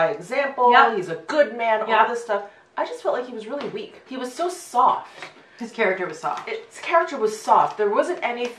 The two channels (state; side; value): identical; both; correlation 1.00